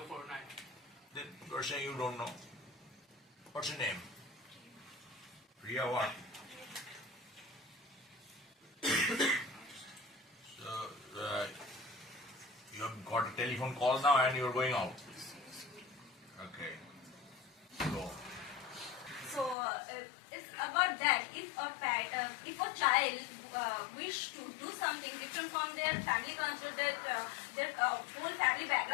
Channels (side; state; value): right; drops out; at 19.6 s